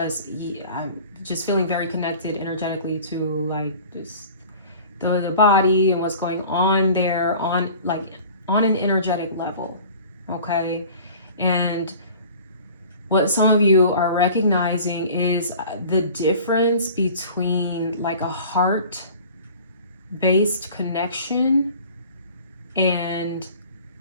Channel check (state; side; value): inverted; both; correlation -0.44